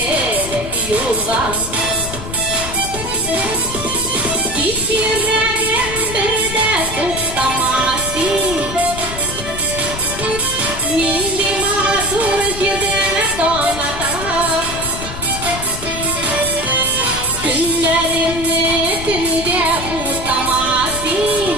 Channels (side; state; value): left; noise; rumble, 9 dB below the sound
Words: yoldan. Git yüreğim bir de tuttamazsın. Nindi mazur yüzüne donatan. Günlerimni tünde tutamazsın.